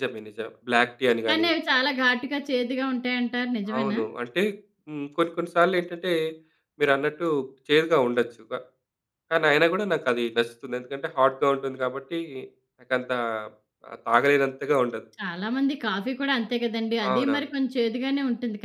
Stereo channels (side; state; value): both; identical; correlation 1.00